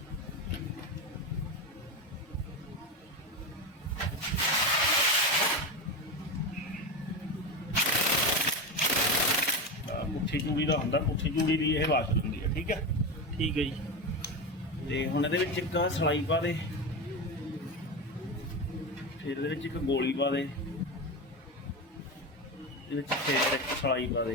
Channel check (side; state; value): both; normal; correlation 0.18